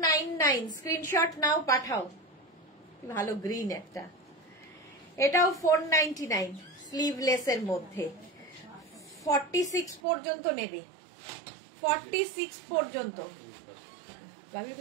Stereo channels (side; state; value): left; drops out; at 10.0 s